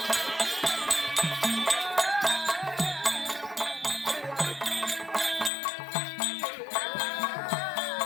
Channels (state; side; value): drops out; right; at 5.5 s